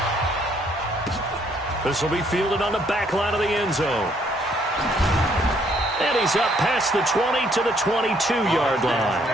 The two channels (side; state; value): both; normal; correlation 0.67